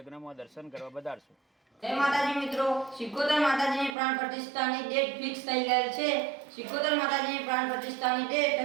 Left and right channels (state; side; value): drops out; left; at 4.0 s